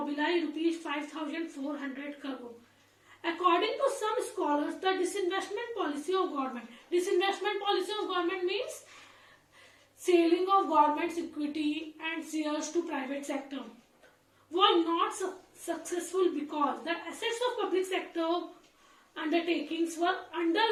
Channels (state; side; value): identical; both; correlation 1.00